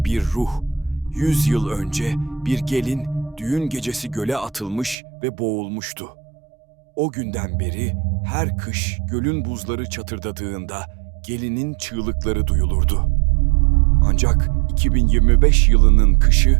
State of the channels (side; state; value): left; drops out; at 5.0 s